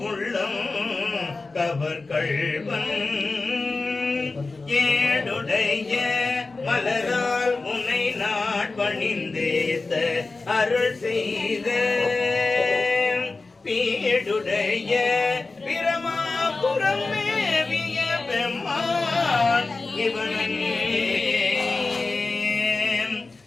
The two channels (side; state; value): right; quieter; 3.6 dB